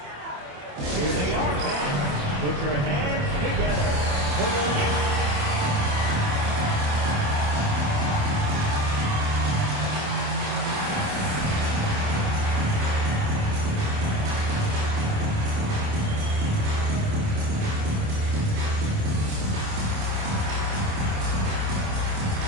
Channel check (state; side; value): late; left; 27 ms